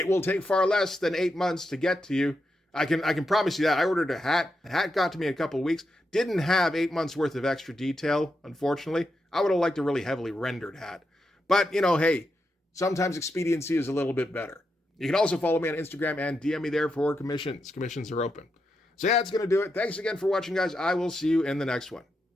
will take far less than 8 months to get to you. I can promise you that. I ordered a hat. The hat got to me in a couple of weeks. Didn't have 8 months worth of extra detail, unfortunately. I would have liked a really heavily rendered hat. But, hey, sometimes expediency is a little bit better. You can also follow me on Instagram and DM me there for commissions. Commissions are open. So yeah, that's going to do it. Thanks again for watching, guys. I will see you in the next one.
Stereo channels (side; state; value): both; normal; correlation 0.85